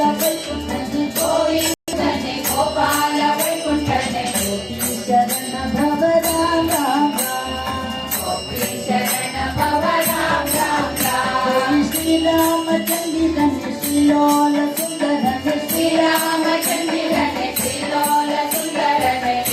ವೈಕುಂಠನೆ ಗೋವಿಂದನೆ ಗೋಪಾಲ ವೈಕುಂಠನೆ ಗೋಪಿ ಶರಣ ಭವ ರಾಮ ಗೋಪಿ ಶರಣ ಭವ ರಾಮ ರಾಮ ಶ್ರೀರಾಮಚಂದಿರನೆ ಶ್ರೀಲೋಲ ಸುಂದರನೆ ಶ್ರೀರಾಮಚಂದಿರನೆ ಶ್ರೀಲೋಲ ಸುಂದರನೆ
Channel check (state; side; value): identical; both; correlation 1.00